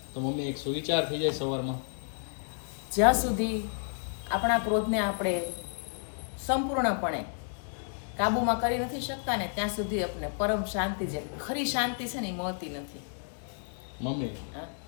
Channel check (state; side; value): silent; right; digital silence